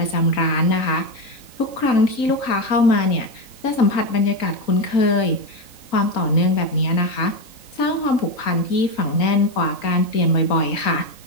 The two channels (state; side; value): late; right; 3.9 ms